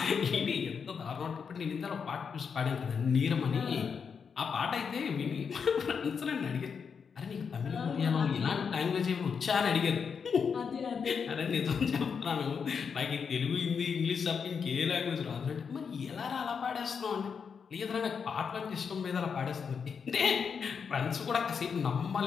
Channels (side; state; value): right; quieter; 6.3 dB